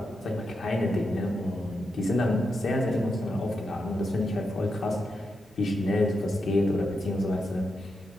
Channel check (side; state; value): both; normal; correlation 0.86